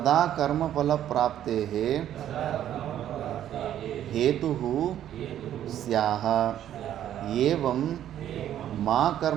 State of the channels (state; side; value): quieter; left; 11.2 dB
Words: ಕರ್ಮಫಲಪ್ರಾಪ್ತೇಃ ಹೇತುಃ ಸ್ಯಾಹ. ಏವಂ ಮಾ